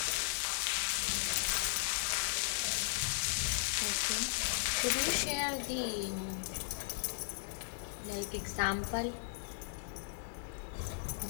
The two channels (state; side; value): silent; right; 53 dB below the other